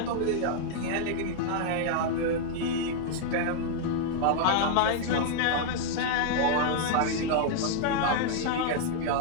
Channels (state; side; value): different; both; correlation 0.00